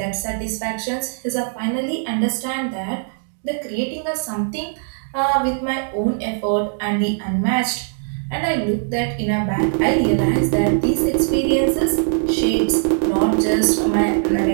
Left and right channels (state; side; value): silent; left; digital silence